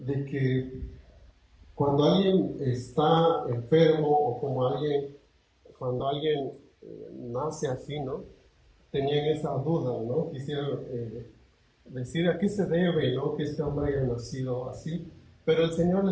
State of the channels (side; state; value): both; identical; correlation 1.00